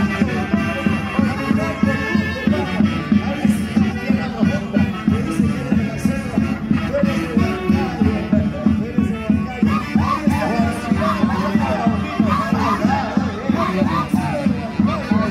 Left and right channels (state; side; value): identical; both; correlation 1.00